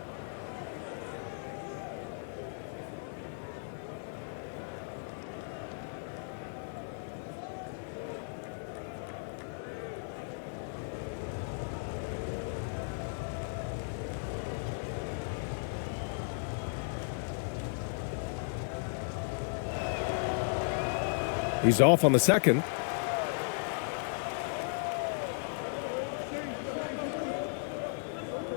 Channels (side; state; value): right; silent; digital silence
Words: He's off on the second.